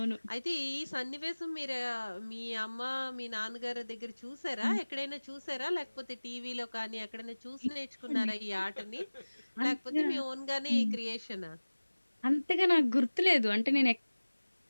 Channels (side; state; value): both; inverted; correlation -1.00